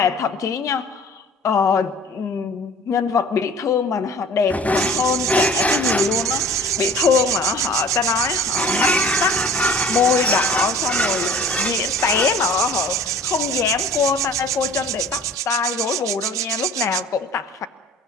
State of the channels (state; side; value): normal; both; correlation 0.47